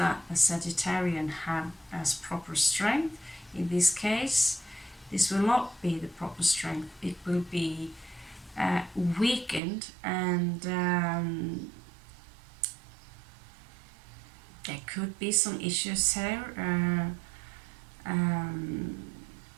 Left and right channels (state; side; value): drops out; left; at 9.6 s